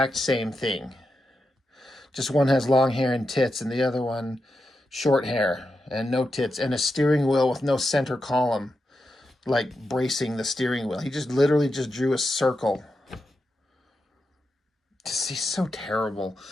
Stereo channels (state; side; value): normal; both; correlation 0.87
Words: same thing. Just one has long hair and tits, and the other one short hair. and no tits, and a steering wheel with no center column, like bracing the steering wheel. He just literally just drew a circle. He's so terrible.